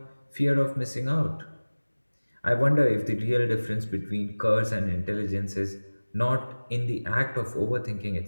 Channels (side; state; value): both; inverted; correlation -1.00